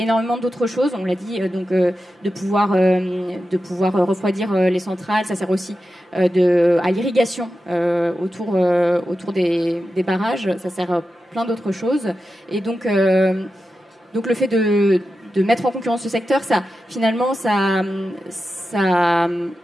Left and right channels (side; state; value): both; normal; correlation 0.91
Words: d'autres choses. On l'a dit, de pouvoir refroidir les centrales. Ça sert aussi à l'irrigation autour des barrages. Ça sert à plein d'autres choses. Et donc le fait de mettre en concurrence ce secteur, ça